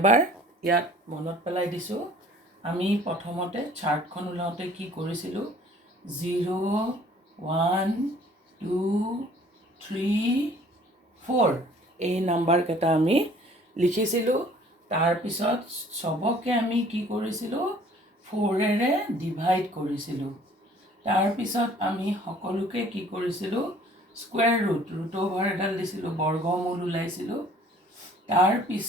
ইয়াত মনত পেলাই দিছোঁ। আমি প্ৰথমতে চাৰ্টখন ওলাওঁতে কি কৰিছিলোঁ, 0, 1, 2, 3, 4 এই নাম্বাৰকেইটা আমি লিখিছিলোঁ। তাৰপিছত চবকে আমি কি কৰিছিলোঁ, 4ৰে ডিভাইড কৰিছিলোঁ। তাৰপিছত আমি সকলোকে কি কৰিছিলোঁ, স্কুৱেৰ ৰুট অভাৰ এডাল দিছিলোঁ, বৰ্গমূল ওলাইছিলোঁ।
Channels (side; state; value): both; normal; correlation 0.54